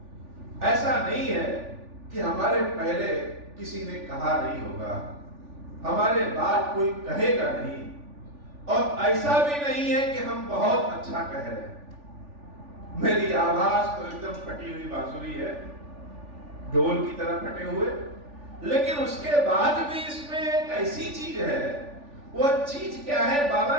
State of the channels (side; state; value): left; late; 3.4 ms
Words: ऐसा नहीं है कि हमारे पहले किसी ने कहा नहीं होगा, हमारे बाद कोई कहेगा नहीं, और ऐसा भी नहीं है कि हम बहुत अच्छा कह रहे हैं। मेरी आवाज तो एकदम फटी हुई बांसुरी है, ढोल की तरह फटे हुए, लेकिन उसके बाद भी इसमें एक ऐसी चीज है। वह चीज क्या है? बाबा